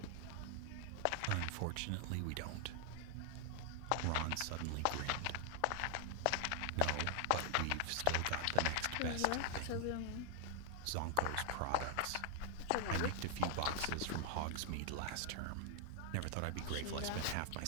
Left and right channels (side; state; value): both; different; correlation 0.00